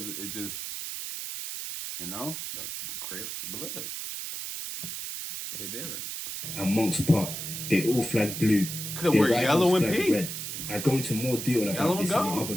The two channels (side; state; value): right; noise; hiss, 6 dB below the sound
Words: it just, you know, the Crips, Bloods. They're different. And Monks Park, they all flagged blue. Could wear yellow and pink. Red. I go into more detail about this in another